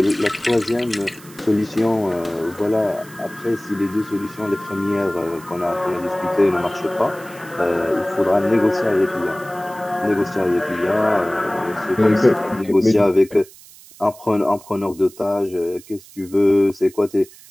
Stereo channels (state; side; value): noise; right; hiss, 21 dB below the sound